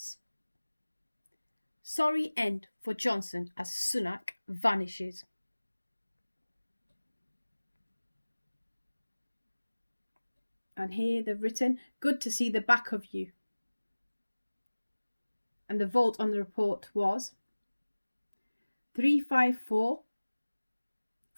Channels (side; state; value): both; inverted; correlation -1.00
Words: Sorry end for Johnson as Sunak vanishes. And here they've written, good to see the back of you. And the vote on the report was 354